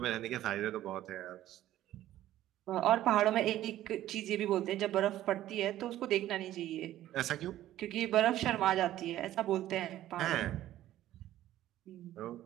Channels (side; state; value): left; quieter; 13.6 dB